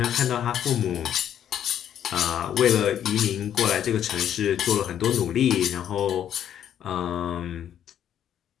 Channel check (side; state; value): right; quieter; 10.0 dB